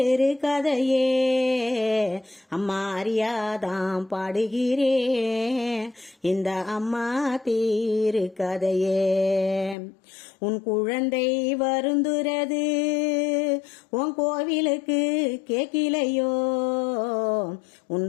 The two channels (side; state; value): right; drops out; at 9.8 s